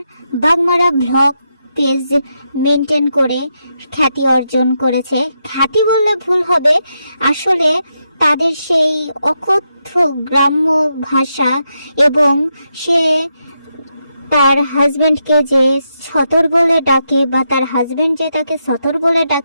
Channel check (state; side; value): inverted; both; correlation -0.83